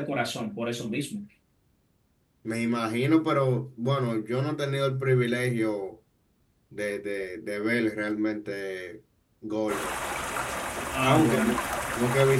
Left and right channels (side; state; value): both; identical; correlation 1.00